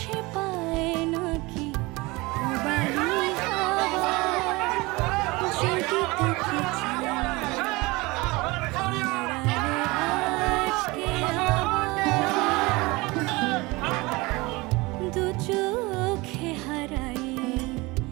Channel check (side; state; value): left; quieter; 23.2 dB